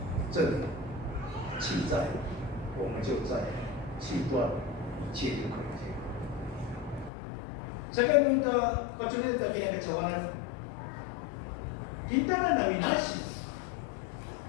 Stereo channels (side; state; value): right; drops out; at 7.1 s